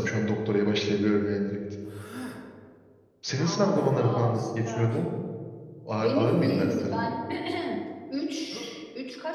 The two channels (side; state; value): both; identical; correlation 1.00